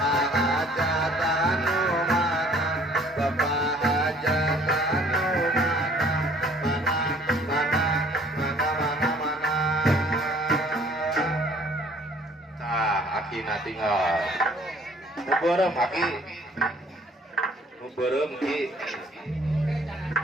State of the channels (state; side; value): normal; both; correlation 0.57